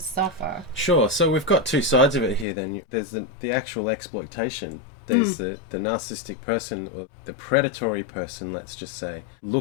suffer. Sure. So we've got two sides of it here then. There's the actual exploitation. There's the narcissistic person, or the predatory person, let's just say,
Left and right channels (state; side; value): drops out; right; at 2.5 s